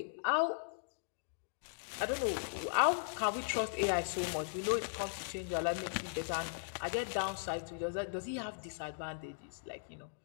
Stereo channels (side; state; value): right; silent; digital silence